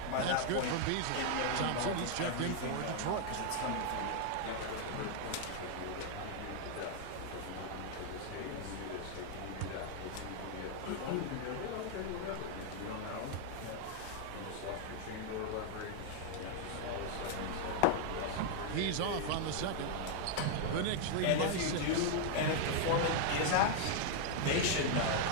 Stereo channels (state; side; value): different; both; correlation 0.00